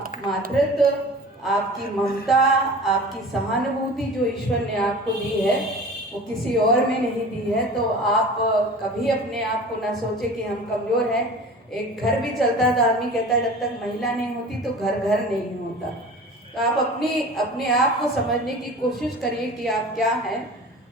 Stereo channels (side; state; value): both; normal; correlation 0.39